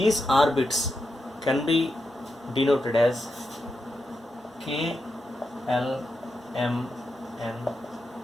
orbits can be denoted as K, L, M, N,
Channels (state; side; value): normal; both; correlation 0.87